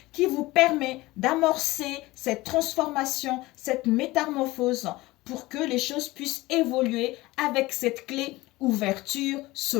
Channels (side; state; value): right; quieter; 19.7 dB